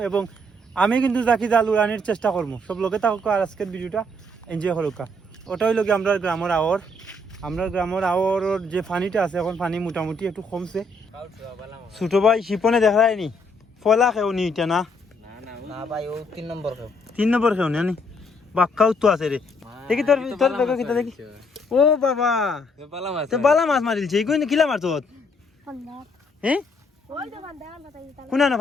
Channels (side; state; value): both; normal; correlation 0.70